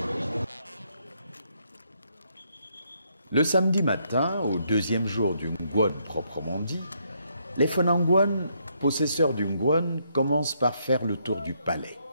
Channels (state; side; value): inverted; both; correlation -0.74